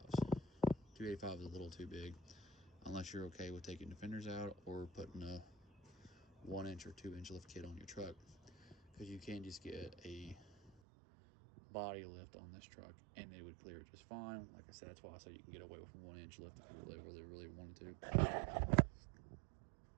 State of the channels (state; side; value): drops out; left; at 10.7 s